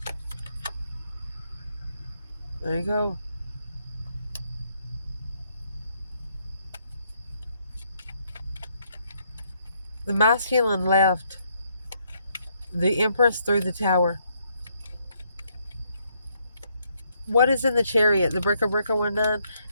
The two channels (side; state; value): both; inverted; correlation -0.74